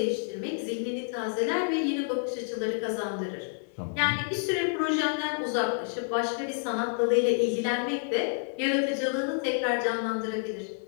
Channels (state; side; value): silent; right; digital silence